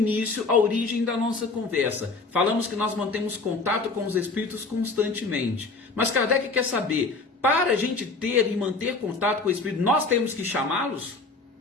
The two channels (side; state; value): right; quieter; 3.7 dB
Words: a origem da nossa conversa. Falamos que nós mantemos contato com os espíritos constantemente. Mas Kardec quer saber, para a gente ter e manter contato com o espírito, nós temos que chamá-los?